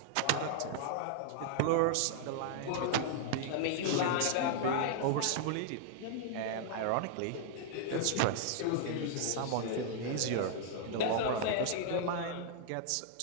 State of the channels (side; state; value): both; different; correlation -0.01